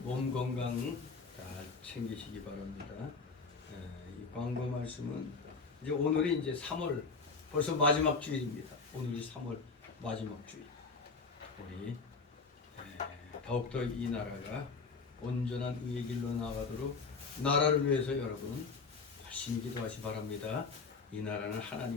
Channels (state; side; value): quieter; right; 4.5 dB